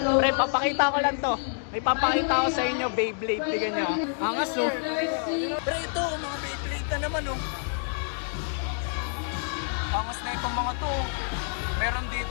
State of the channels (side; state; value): right; silent; 60 dB below the other